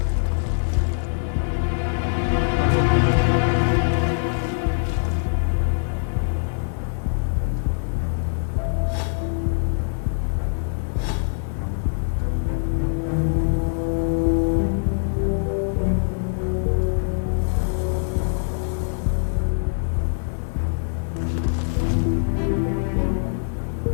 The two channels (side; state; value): right; silent; digital silence